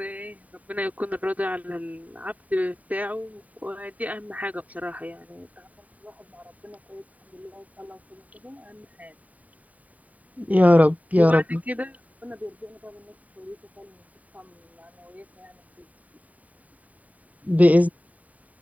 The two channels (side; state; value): left; late; 0.071 ms